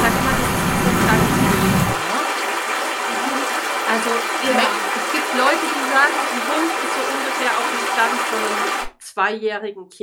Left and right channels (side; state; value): both; identical; correlation 1.00